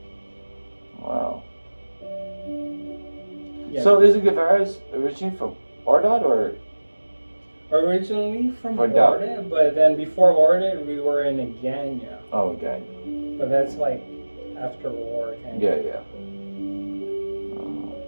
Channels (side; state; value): both; inverted; correlation -1.00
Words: Wow. Yeah. So is Guevara's originally from Ordot or? Originally from Or Orda, but then before Orda we were in Aganya. Oh, okay. But that's like after war kind Yeah, of. yeah.